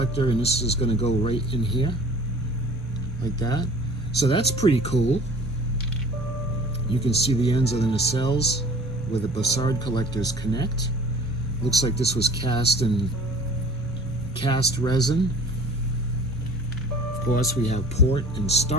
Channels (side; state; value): both; normal; correlation 0.47